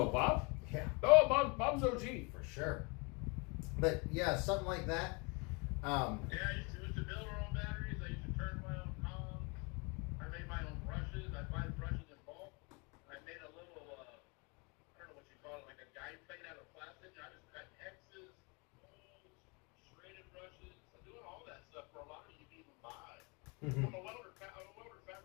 Bob? Yeah. Oh, Bob's OG. For sure. But yeah, something like that. Yeah, I used to build our own batteries. I used to turn my own columns. I made my own brushes. I buy brushes in bulk. I made a little, I don't know what you call it, like a guide plate out of plastic. I just cut X's, holes, serrated brushes. I'm doing all that stuff for a lot of you can even buy. I'm a welder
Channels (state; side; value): quieter; right; 30.8 dB